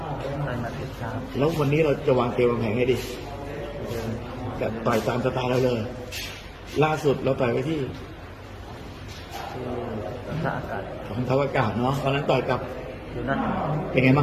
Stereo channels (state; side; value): identical; both; correlation 1.00